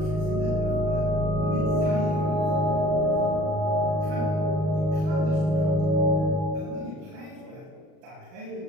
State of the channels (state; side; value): late; left; 38 ms